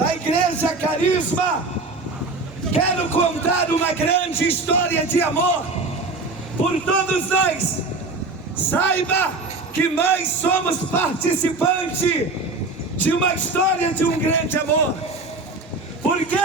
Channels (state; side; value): quieter; left; 3.4 dB